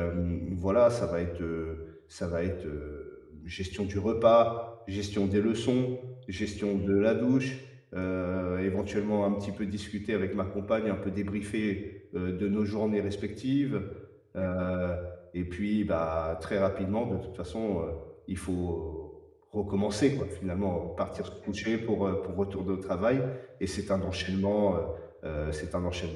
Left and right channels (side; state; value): both; identical; correlation 1.00